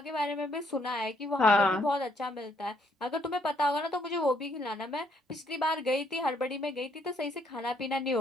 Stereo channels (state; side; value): normal; both; correlation 0.69